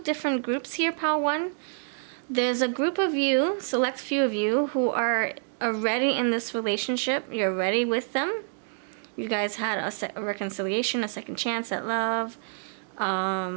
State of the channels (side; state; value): left; silent; digital silence